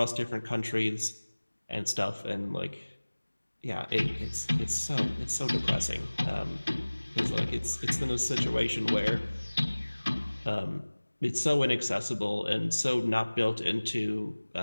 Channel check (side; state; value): both; inverted; correlation -1.00